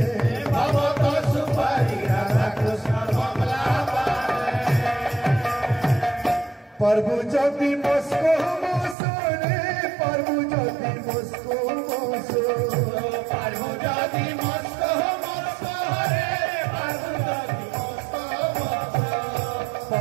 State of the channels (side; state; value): left; drops out; at 9.0 s